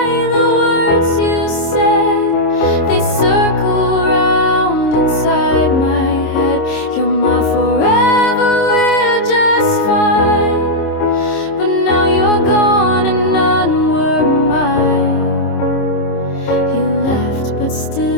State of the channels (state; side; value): late; right; 26 ms